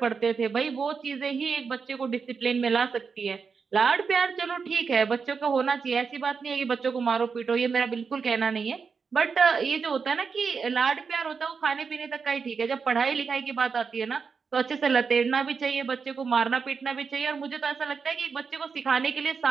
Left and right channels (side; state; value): left; quieter; 5.5 dB